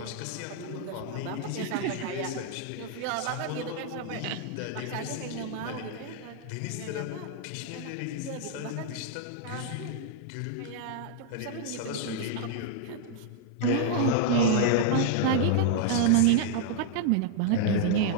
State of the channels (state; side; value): different; both; correlation 0.00